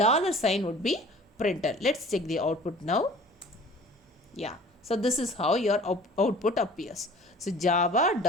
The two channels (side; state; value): both; normal; correlation 0.47